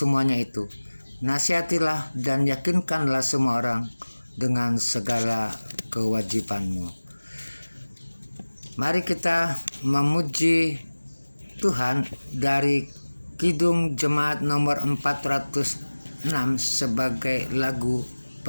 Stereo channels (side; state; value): both; inverted; correlation -1.00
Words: itu, nasihatilah dan yakinkanlah semua orang dengan segala kewajibanmu. Mari kita memuji Tuhan dari Kidung Jemaat nomor 406 sebagai lagu